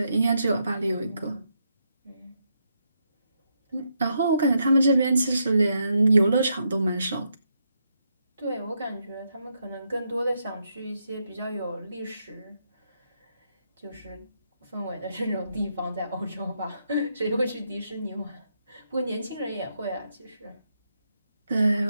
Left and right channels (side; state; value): both; inverted; correlation -0.80